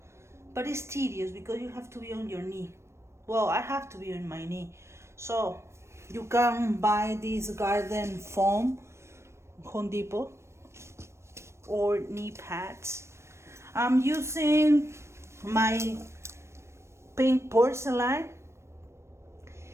but it's tedious because you have to be on your knee. Well, I have to be on my knee. So you can buy this garden foam, Home Depot, or knee pads. I'm using my pink porcelain.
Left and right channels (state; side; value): late; left; 0.13 ms